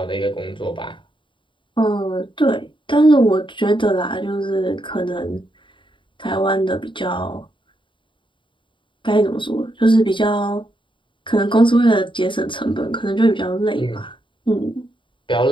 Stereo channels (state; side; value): late; right; 0.24 ms